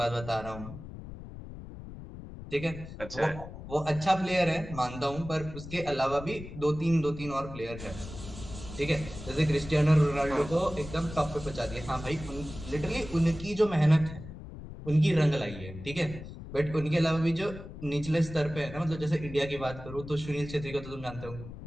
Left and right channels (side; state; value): left; noise; rumble, 12 dB below the sound